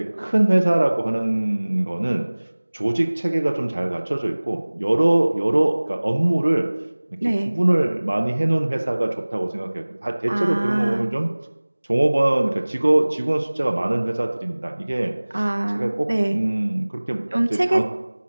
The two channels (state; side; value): inverted; both; correlation -1.00